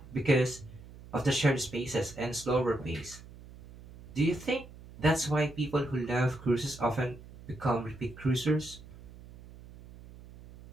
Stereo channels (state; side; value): noise; right; hum, 18 dB below the sound